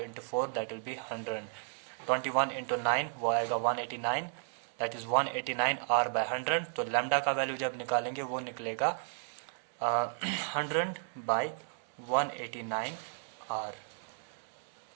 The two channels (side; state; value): left; silent; 55 dB below the other